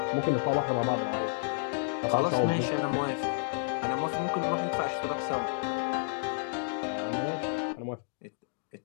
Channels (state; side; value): silent; right; digital silence